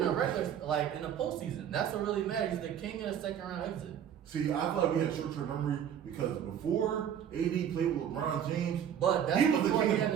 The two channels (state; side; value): quieter; left; 9.1 dB